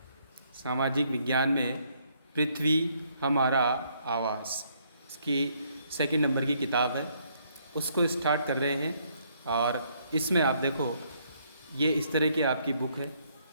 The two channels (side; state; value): both; inverted; correlation -0.69